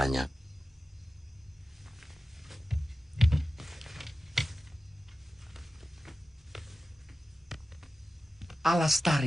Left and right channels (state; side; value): normal; both; correlation 0.94